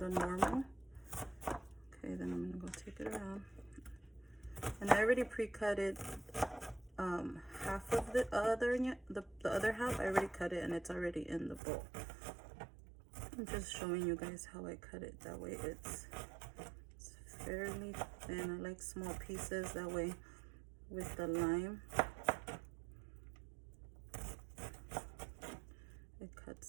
normal. Okay, then I'm gonna go take it around, and I already pre-cut it. Half of the other half I already cut it, and it's already in the bowl. I'm just showing you guys how I cut it. That way it's fairly thin. I like small pieces, that way with the lime it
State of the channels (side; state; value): left; drops out; at 11.6 s